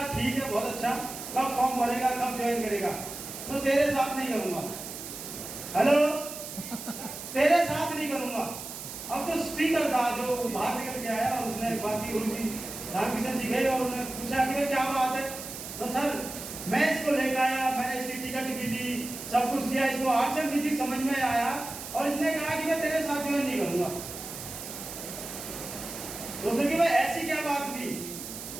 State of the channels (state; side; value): noise; right; hiss, 10 dB below the sound